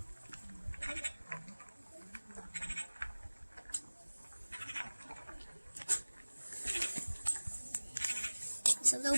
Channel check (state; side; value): inverted; both; correlation -1.00